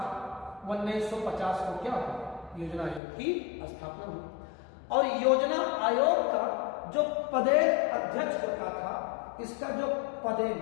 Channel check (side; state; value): right; drops out; at 3.0 s